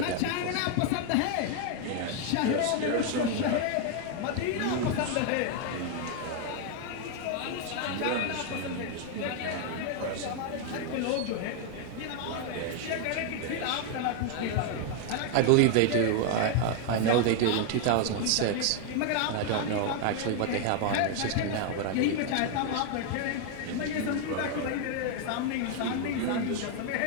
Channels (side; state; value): both; different; correlation 0.00